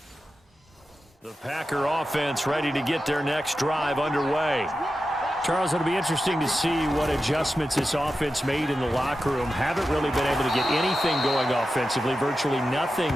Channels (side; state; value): both; normal; correlation 0.91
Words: The Packer offense ready to get their next drive underway. Charles, it'll be interesting to see what adjustments this offense made in the locker room. Haven't really been able to get anything going offensively, virtually nothing